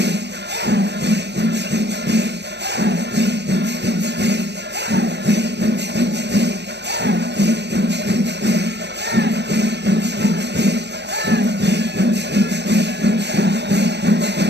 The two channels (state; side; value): late; left; 0.50 ms